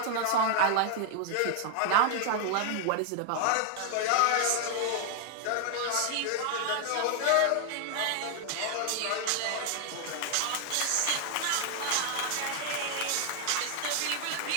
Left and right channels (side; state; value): both; different; correlation 0.00